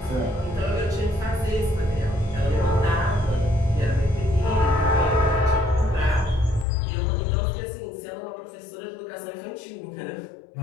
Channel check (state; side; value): drops out; right; at 6.7 s